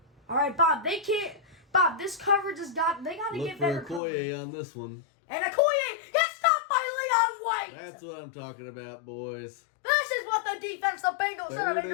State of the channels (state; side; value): drops out; right; at 4.0 s